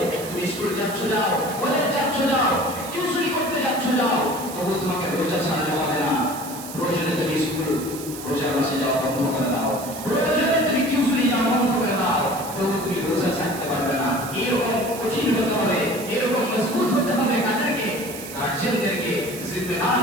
তুমি স্কুল যাচ্ছ যাও, কলেজ যাচ্ছ যাও, টিউশনি করতে যাচ্ছ যাও, তবু তোমাকে রোজা ছাড়তে হবে না। প্রয়োজনে তুমি স্কুল রোজার মাসে যাওয়া বন্ধ করে দাও, প্রয়োজনে তুমি টিউশনি যাওয়া বন্ধ করে দাও, তবু তুমি রোজা ছাড়তে পারবে না। এরকম কঠিন হতে হবে, এরকম মজবুত হতে হবে কাদেরকে? গার্জিয়ানদেরকে,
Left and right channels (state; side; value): noise; right; hiss, 12 dB below the sound